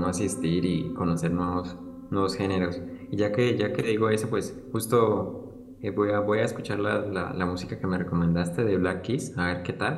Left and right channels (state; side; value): identical; both; correlation 1.00